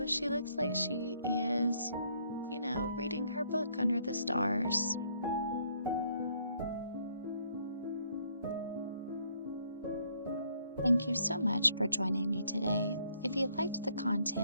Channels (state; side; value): inverted; both; correlation -0.68